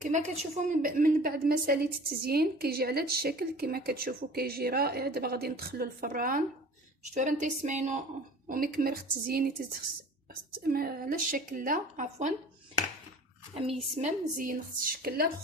كما كتشوفوا من بعد ما ساليت التزيين كيجي على هذا الشكل. كما كتشوفوا كيجي رائع. دابا غادي ندخلو الفران. شفتوا راه تيسمعينو ومكمل التزيين على الشكل لا عفوا امي يسمم زين خص الشكل لا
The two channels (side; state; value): both; normal; correlation 0.43